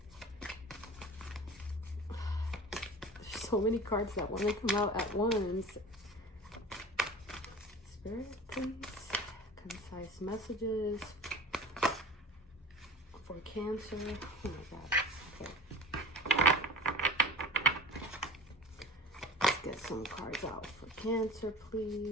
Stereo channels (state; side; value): normal; both; correlation 0.38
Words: There's so many cards that want to come out at once. Spirit, please. Concise messages for Cancer. Oh my god. Okay. Let's get some cards out for Cancer,